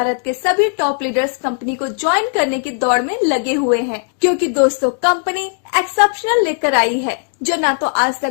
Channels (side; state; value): right; silent; 68 dB below the other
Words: के सभी टॉप लीडर्स कंपनी को ज्वाइन करने की दौड़ में लगे हुए हैं, क्योंकि दोस्तों कंपनी एक्सेप्शनल लेकर आई है जो ना तो आज तक